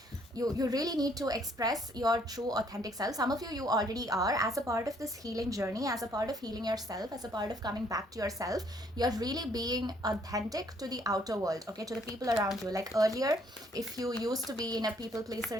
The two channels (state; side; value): normal; both; correlation 0.65